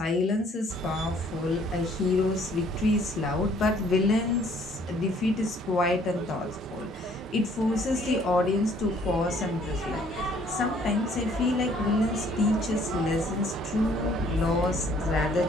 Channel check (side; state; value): both; normal; correlation 0.60